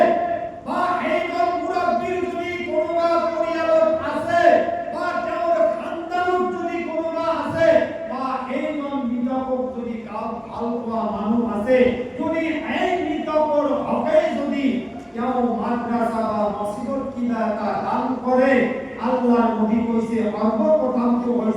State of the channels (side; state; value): both; identical; correlation 1.00